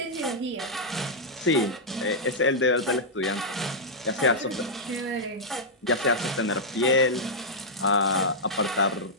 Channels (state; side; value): normal; both; correlation -0.06